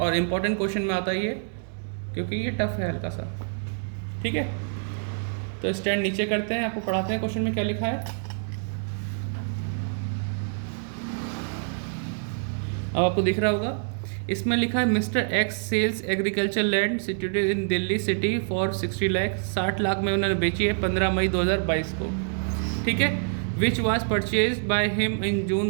इम्पॉर्टेंट क्वेश्चन में आता है ये, क्योंकि ये टफ है हल्का सा। ठीक है, तो स्टैंड नीचे करते हैं, आपको पढ़ाते हैं क्वेश्चन में क्या लिखा है। अब आपको दिख रहा होगा, इसमें लिखा है mister X sells agriculture land situated in Delhi city for 60 lakh. 60 lakh में उन्होंने बेची है 15 मई 2022 को। ठीक है, which was purchase by him in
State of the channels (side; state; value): left; silent; digital silence